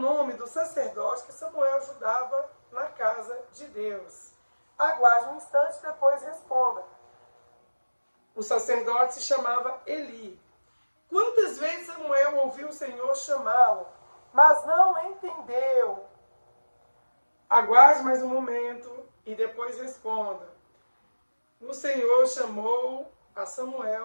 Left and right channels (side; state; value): both; inverted; correlation -1.00